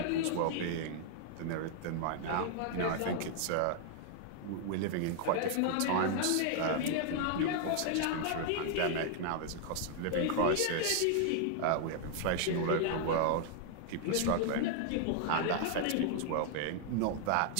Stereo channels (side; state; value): both; different; correlation 0.00